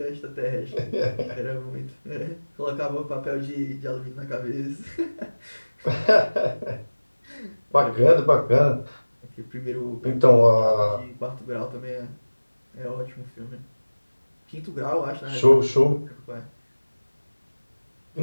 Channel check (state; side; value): inverted; both; correlation -1.00